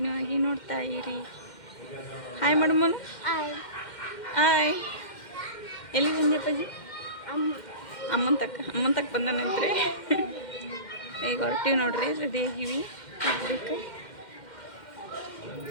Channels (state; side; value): late; right; 2.1 ms